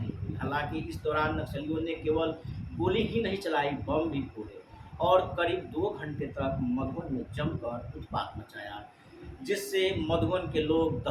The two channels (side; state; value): both; identical; correlation 1.00